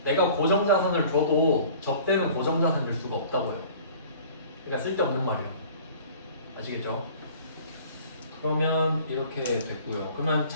내가 고정자산을 줘도 접대는 고정자산일 수가 없다고요. 그러니까 쓸데없는 말이에요. 아시겠죠? 그러면 이렇게 됐고요. 그러면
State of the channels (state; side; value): inverted; both; correlation -0.48